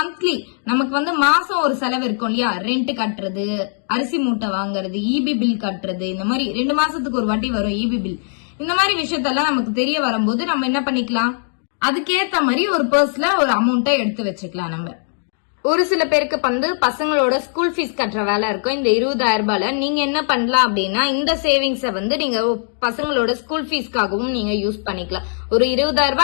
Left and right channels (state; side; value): silent; right; digital silence